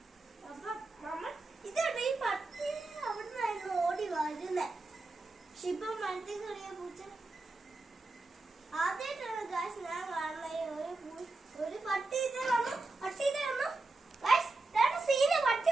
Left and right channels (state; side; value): quieter; left; 3.3 dB